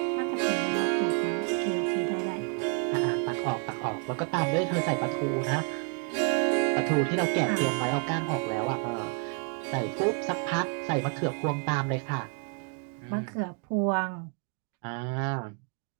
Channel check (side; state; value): left; quieter; 37.1 dB